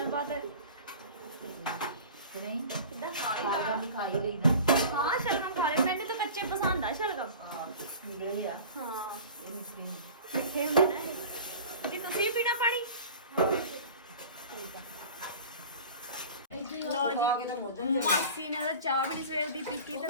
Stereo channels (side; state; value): both; inverted; correlation -0.39